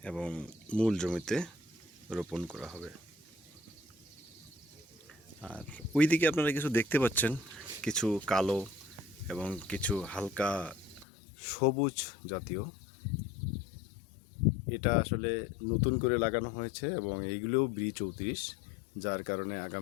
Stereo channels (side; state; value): right; drops out; at 11.1 s